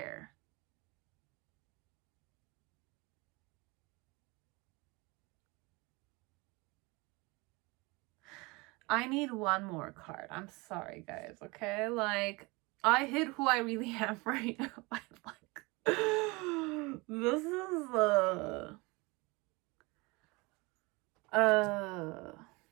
I need one more card. I'm sorry, guys, okay? Like, I hid who I really am right now. I'm like, this is,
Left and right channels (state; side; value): quieter; left; 25.3 dB